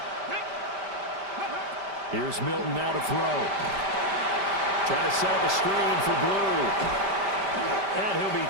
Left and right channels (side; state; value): left; late; 5.1 ms